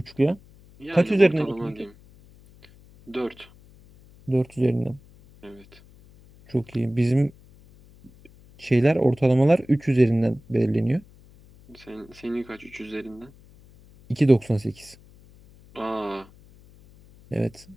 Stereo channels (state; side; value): noise; left; hum, 25 dB below the sound